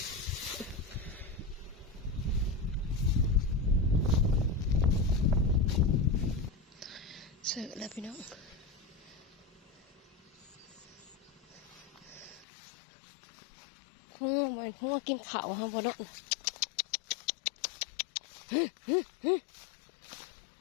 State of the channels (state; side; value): drops out; right; at 12.5 s